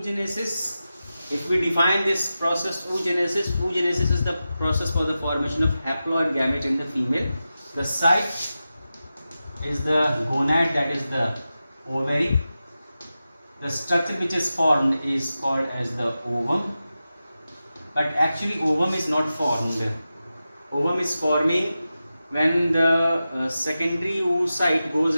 If we define this process, oogenesis is the process for the formation of haploid gamete in the female. The site is the gonad, that is the ovary. The structure which is formed is called as the ovum. But actually ovum is not formed. Ovum is forming when the secondary oocyte goes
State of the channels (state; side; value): inverted; both; correlation -0.93